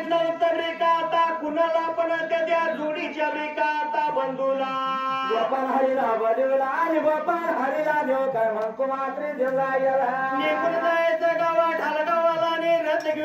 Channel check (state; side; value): identical; both; correlation 1.00